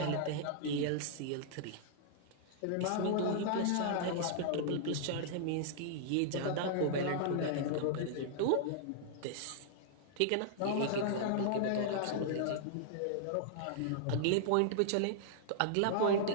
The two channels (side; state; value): both; different; correlation -0.01